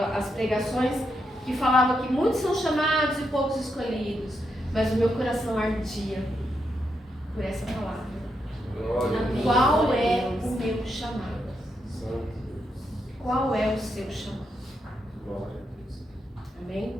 as pregações que falavam que muitos são chamados e poucos escolhidos, mas o meu coração ardia por essa palavra. Qual é o meu chamado? Qual é o seu chamado?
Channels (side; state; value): both; normal; correlation 0.82